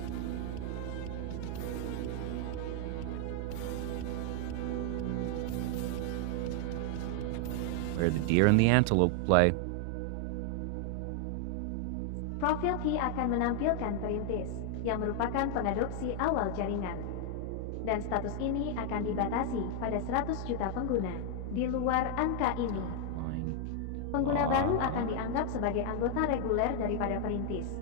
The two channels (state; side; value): different; both; correlation 0.00